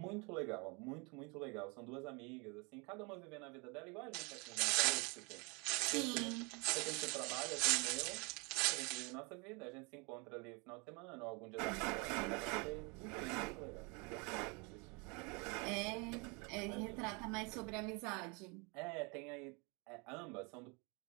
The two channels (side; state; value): left; quieter; 30.6 dB